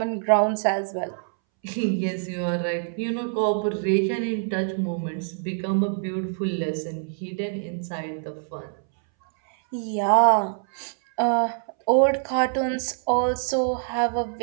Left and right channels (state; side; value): silent; left; 62 dB below the other